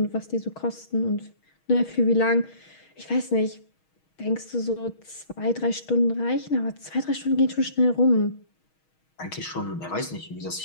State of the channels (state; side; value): late; right; 6.3 ms